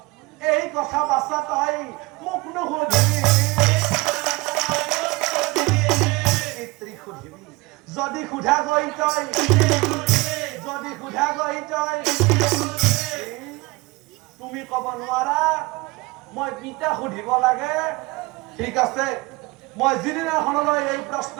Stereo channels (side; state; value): left; quieter; 23.5 dB